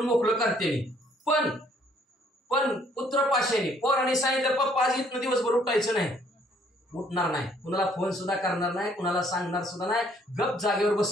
मोकळं करते. पण पुत्र पाशाने पोरांनी सांगितलं पप्पा आज इथनं दिवसभर उठायचं नाही, उठणार नाही, कुणाला फोन सुद्धा करणार नाही, कुणाला सांगणार सुद्धा नाही, गप जागेवर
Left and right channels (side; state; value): both; normal; correlation 0.63